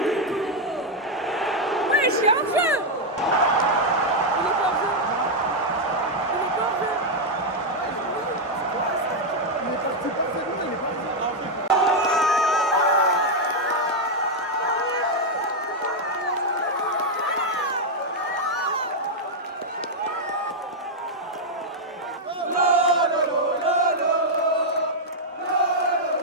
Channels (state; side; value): normal; both; correlation -0.01